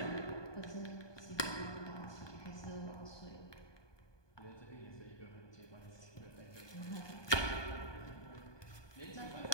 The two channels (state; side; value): late; right; 1.2 ms